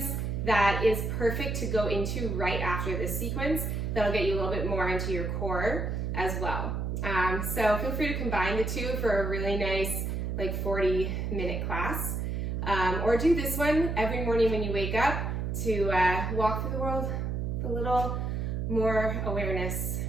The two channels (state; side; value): noise; right; hum, 1 dB below the sound